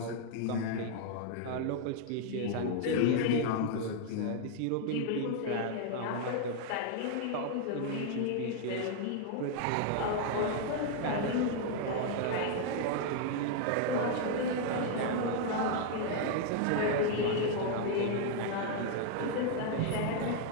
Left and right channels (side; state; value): both; different; correlation 0.00